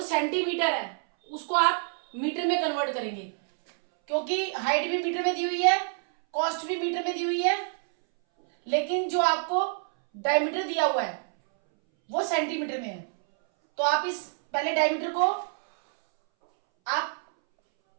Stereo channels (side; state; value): left; silent; 60 dB below the other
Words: सेंटीमीटर है उसको आप मीटर में कन्वर्ट करेंगे, क्योंकि हाइट भी मीटर में दी हुई है, कॉस्ट भी मीटर में दी हुई है, लेकिन जो आपको डायमीटर दिया हुआ है वो सेंटीमीटर में है। तो आप इस पहले डायमीटर को आप